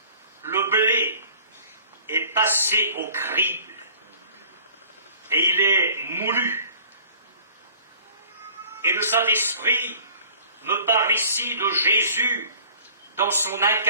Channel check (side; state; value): both; inverted; correlation -0.50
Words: Le blé est passé au crible et il est moulu. Et le Saint-Esprit me parle ici de Jésus dans son